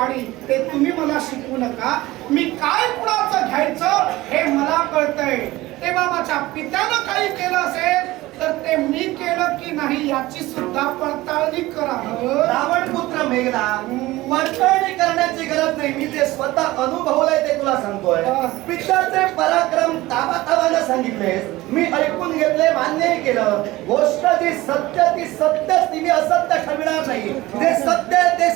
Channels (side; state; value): left; quieter; 18.5 dB